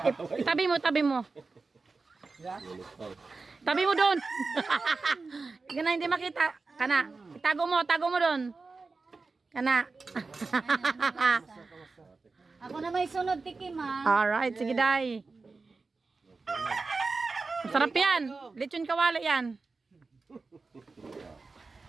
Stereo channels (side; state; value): left; quieter; 4.0 dB